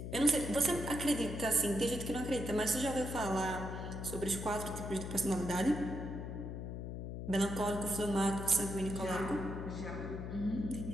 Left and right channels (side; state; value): left; noise; hum, 6 dB below the sound